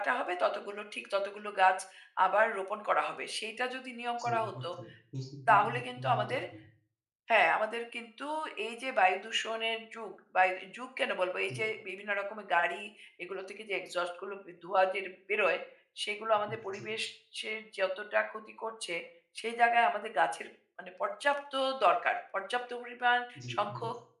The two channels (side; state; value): both; identical; correlation 1.00